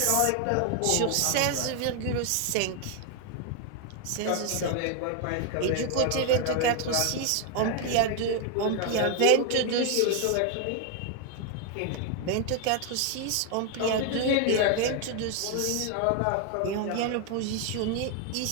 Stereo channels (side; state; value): both; different; correlation 0.01